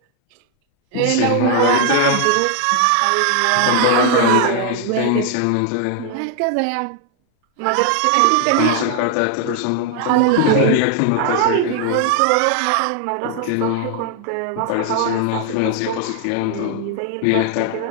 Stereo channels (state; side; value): different; both; correlation 0.00